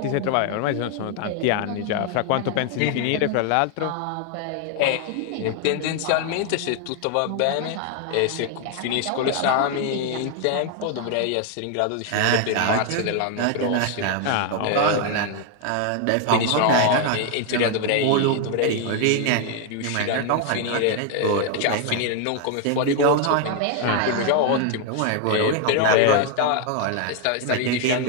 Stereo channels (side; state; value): both; different; correlation 0.00